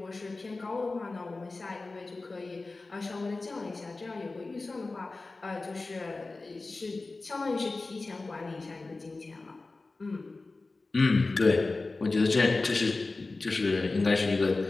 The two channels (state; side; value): quieter; right; 3.5 dB